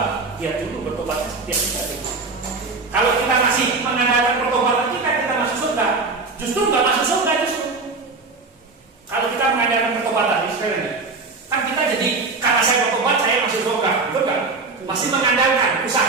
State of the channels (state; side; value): quieter; left; 3.9 dB